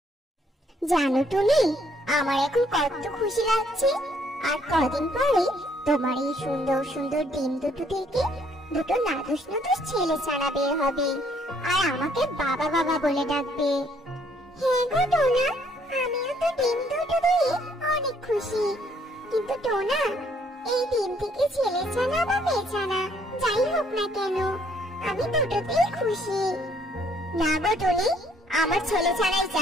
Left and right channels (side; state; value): both; normal; correlation 0.66